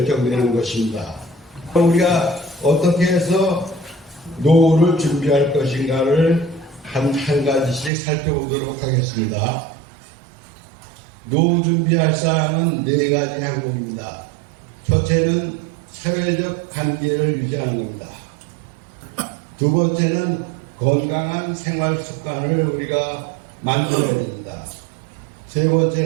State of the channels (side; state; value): left; drops out; at 7.9 s